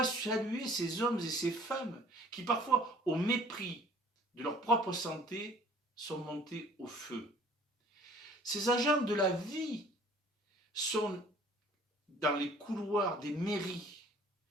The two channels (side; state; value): both; normal; correlation 0.52